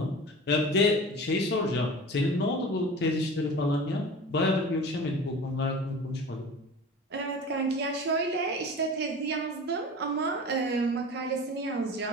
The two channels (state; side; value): normal; both; correlation 0.36